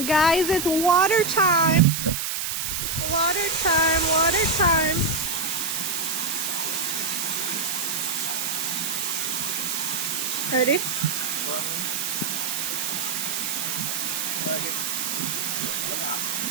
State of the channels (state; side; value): noise; right; hiss, 2 dB below the sound